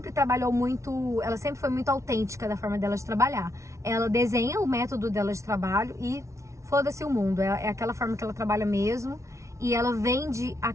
trabalhou muito, ela sempre foi muito autêntica da forma dela de trabalhar. Ela desenha o método dela de trabalho e foda-se o mundo, é aquela forma que ela trabalha mesmo. E ela vende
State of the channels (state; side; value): late; left; 0.14 ms